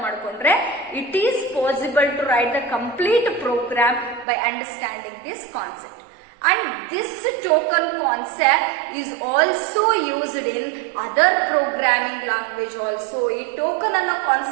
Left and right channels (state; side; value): drops out; left; at 4.2 s